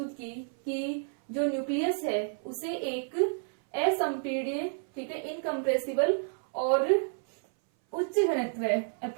की कि जो न्यूक्लियस है उसे एक असंपीड्य, ठीक है, इनकम्प्रेसिबल और उच्च घनत्व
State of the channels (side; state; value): left; silent; 58 dB below the other